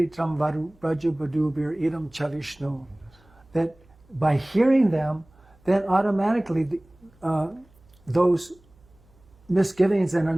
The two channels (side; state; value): right; noise; hum, 30 dB below the sound